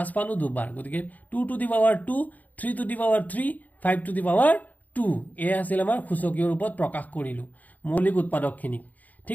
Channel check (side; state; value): right; late; 0.078 ms